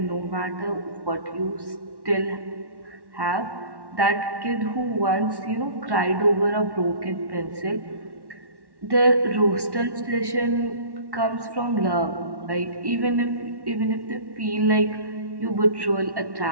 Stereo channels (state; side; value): late; left; 1.1 ms